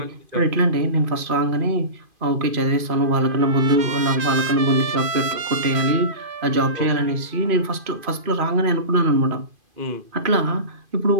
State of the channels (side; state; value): left; late; 2.5 ms